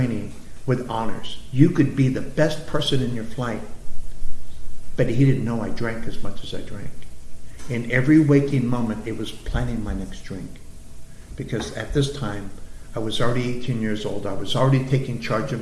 with honors. You could be the best person in your flight. But he didn't know I drank as much as I drank. In every waking moment, it was planning my next drink. Because at this time, I was already 18 years old. I was already taking charge of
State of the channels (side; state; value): both; identical; correlation 1.00